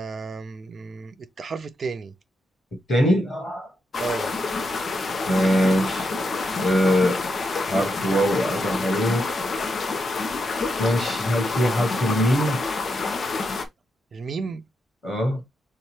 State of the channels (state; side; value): normal; both; correlation 0.84